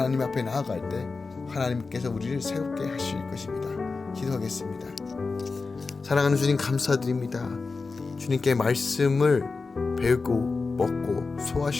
앞에 나아갈 때 하나님께서 우리를 새롭게 하실 것입니다. 기도하겠습니다. 사랑하는 주님 감사드립니다. 주님께 말씀을 배우고 먹고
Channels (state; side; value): quieter; right; 4.2 dB